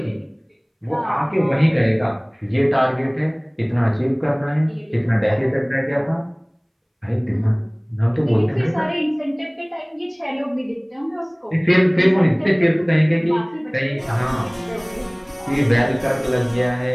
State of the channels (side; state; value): both; identical; correlation 1.00